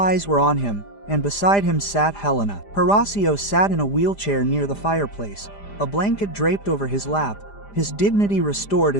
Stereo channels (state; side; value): late; right; 5.0 ms